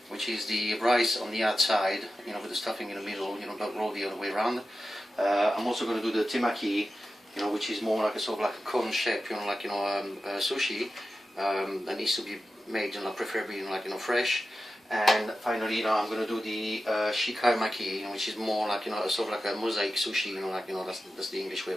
which is the rice on the outside, with the stuffing in the middle, but roll the other way around. I'm also going to do the temaki, which is more like a sort of like a cone shape, sushi. That needs to be made, preferably, fresh. And finally, I'm going to do the shikai maki, which is more like, sort of like a mosaic sushi, that's the English way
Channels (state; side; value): normal; both; correlation 0.93